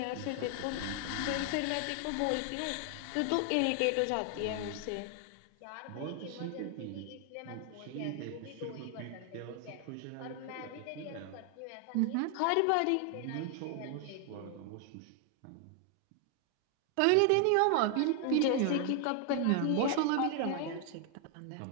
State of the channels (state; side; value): different; both; correlation 0.00